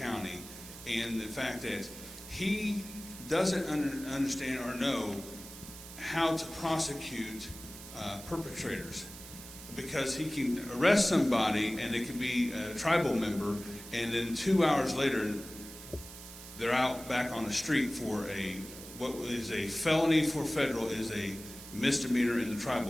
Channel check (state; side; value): noise; right; hiss, 14 dB below the sound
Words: and the fact that he doesn't understand or know how to prosecute perpetrators, because he can arrest somebody and it can be a tribal member, and then 2 hours later they're out back on the street for what is a felony for federal is a misdemeanor in the